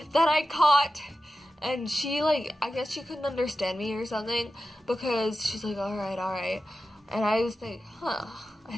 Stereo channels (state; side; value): normal; both; correlation 0.93